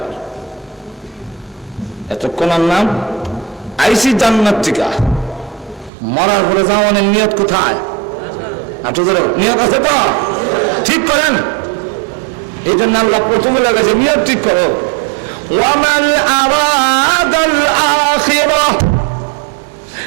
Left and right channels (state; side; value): drops out; left; at 5.9 s